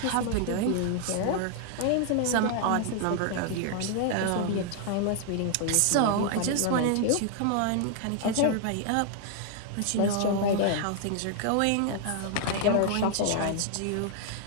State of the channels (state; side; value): different; both; correlation 0.00